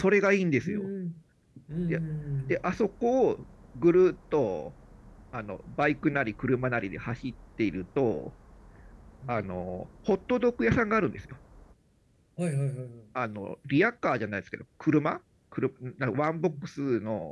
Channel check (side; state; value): both; identical; correlation 1.00